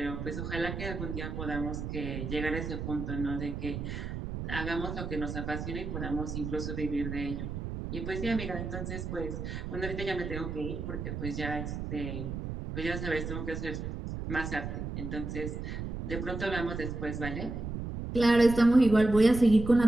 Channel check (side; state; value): right; noise; rumble, 5 dB below the sound